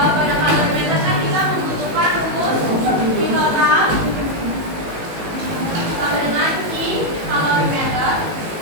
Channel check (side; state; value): left; late; 18 ms